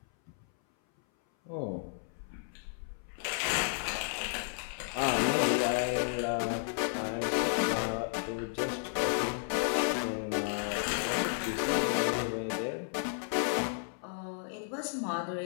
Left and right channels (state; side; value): silent; right; 56 dB below the other